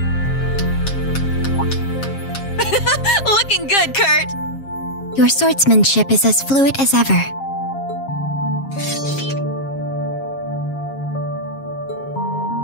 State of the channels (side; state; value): right; late; 7.4 ms